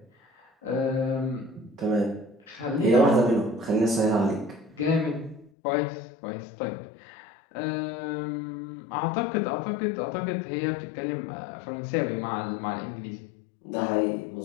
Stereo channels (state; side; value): drops out; right; at 5.5 s